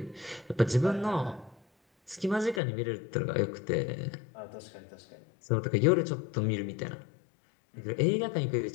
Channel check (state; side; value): drops out; right; at 2.6 s